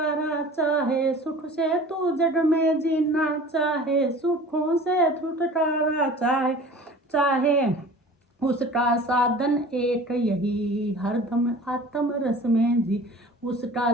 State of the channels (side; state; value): both; normal; correlation 0.43